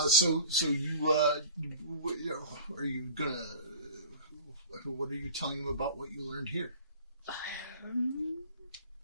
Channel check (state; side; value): inverted; both; correlation -0.42